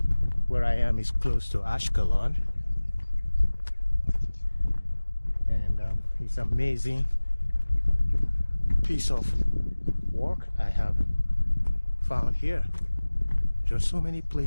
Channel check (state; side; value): inverted; both; correlation -1.00